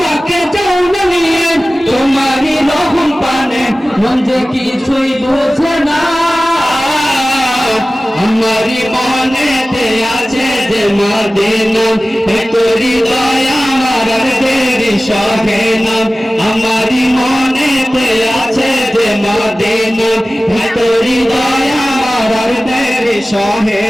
যাও না নিয়ে তোমারি রহম পানে, মন যে কিছুই বোঝে না। আমারি মনেতে আছে যে মদিনা, তোরি দয়া আমার আর দেরি সহে না। আমারি মনেতে আছে যে মদিনা, তোরি দয়া আমার আর দেরি সহে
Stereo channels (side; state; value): both; normal; correlation 0.97